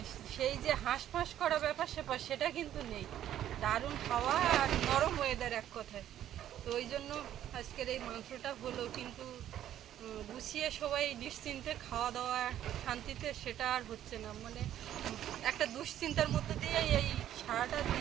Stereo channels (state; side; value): quieter; left; 11.5 dB